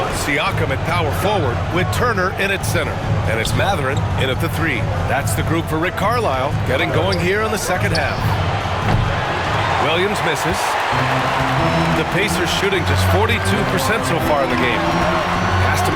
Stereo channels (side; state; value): both; identical; correlation 1.00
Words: Siakam at power forward with Turner in at center. And it's Mathurin in at the 3. That's the group for Rick Carlisle getting going here in the second half. Williams misses. The Pacers shooting just 42% so far in the game. Pass to